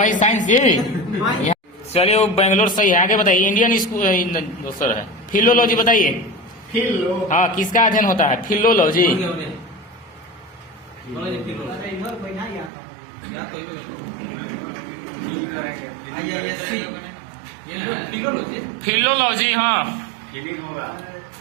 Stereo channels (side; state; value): left; drops out; at 12.7 s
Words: साइंस जी चलिए वो बेंगलोर सही है आगे बताइए इंडियन स्कूल दूसरा है फिलोलॉजी बताइए हाँ किसका अध्ययन होता है फिलोलॉजी अरे इधर बैठा ही आता फिलोलॉजी हाँ फीलिंग होगा